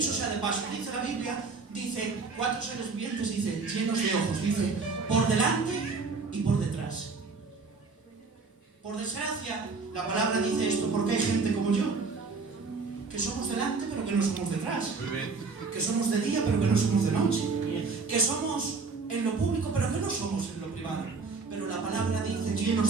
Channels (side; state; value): left; quieter; 4.4 dB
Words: sea de paso, dice la Biblia, dice 4 seres vivientes, dice llenos de ojos, dice por delante y por detrás. Por desgracia, la palabra dice esto porque hay gente como yo, que somos delante pero que no somos detrás, que somos de día pero que no somos de noche, que somos en lo público pero que no somos en lo privado. Pero la palabra dice